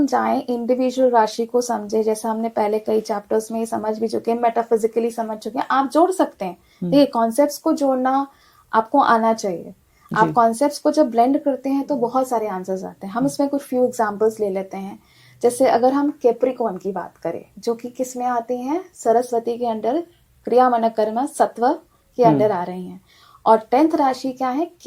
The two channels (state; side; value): identical; both; correlation 1.00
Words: जाएं इंडिविजुअल राशि को समझे, जैसे हमने पहले कई चैप्टर्स में समझ भी चुके हैं, मेटाफिजिकली समझ चुके हैं, आप जोड़ सकते हैं। देखिए, कॉन्सेप्ट्स को जोड़ना आपको आना चाहिए। आप कॉन्सेप्ट्स को जब ब्लेंड करते हैं तो बहुत सारे आंसर्स आते हैं। हम इसमें कुछ फ्यू एग्जांपल्स ले लेते हैं। जैसे अगर हम कैप्रिकॉर्न की बात करें, जो कि किस में आती हैं? सरस्वती के अंडर, क्रिया मन कर्म सत्व के अंडर आ रही हैं। और 10th राशि क्या है?